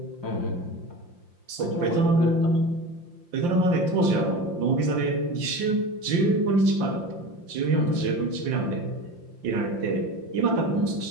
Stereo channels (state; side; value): late; left; 5.7 ms